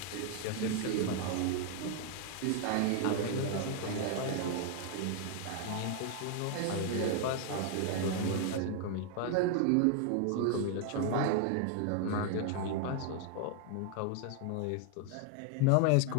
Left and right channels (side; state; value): both; different; correlation 0.00